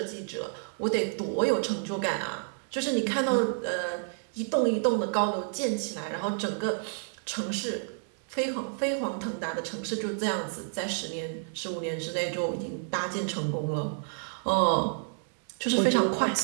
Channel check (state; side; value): silent; left; 58 dB below the other